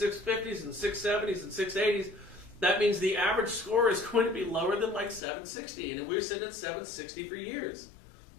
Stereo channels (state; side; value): drops out; right; at 5.2 s